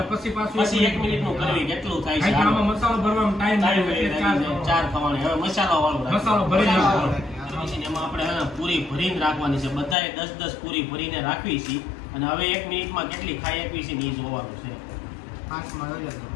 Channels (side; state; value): right; drops out; at 10.0 s